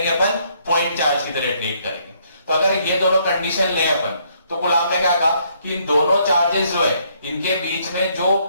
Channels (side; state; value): both; inverted; correlation -0.69